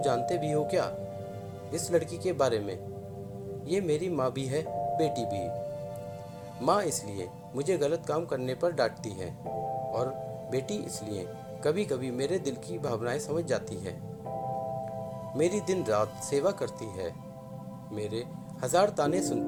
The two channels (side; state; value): both; identical; correlation 1.00